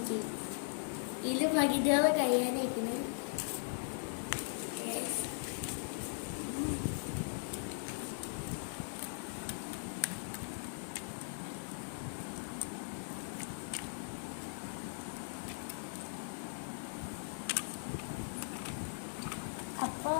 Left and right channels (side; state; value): right; silent; digital silence